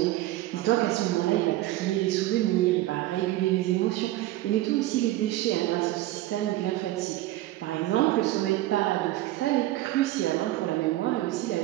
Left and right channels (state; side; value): quieter; left; 15.9 dB